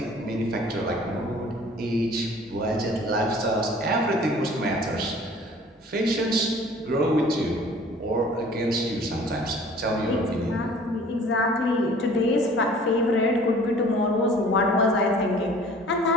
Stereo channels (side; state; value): both; normal; correlation 0.50